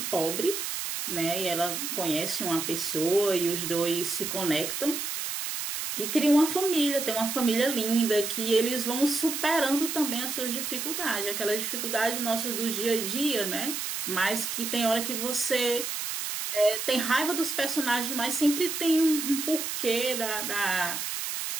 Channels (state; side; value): noise; right; hiss, 3 dB below the sound